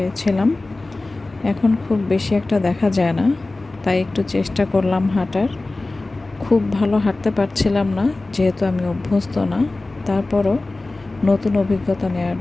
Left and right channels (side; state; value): right; quieter; 3.1 dB